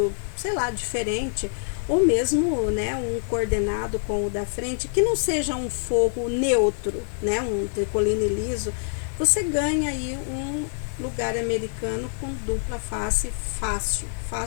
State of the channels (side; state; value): right; silent; digital silence